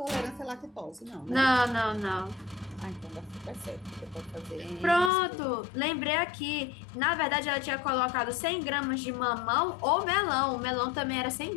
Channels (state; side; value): drops out; right; at 5.1 s